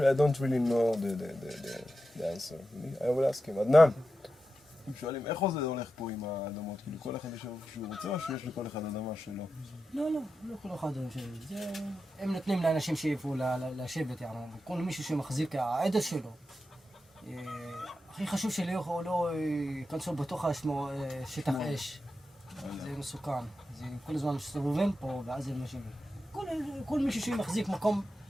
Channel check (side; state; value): both; normal; correlation 0.90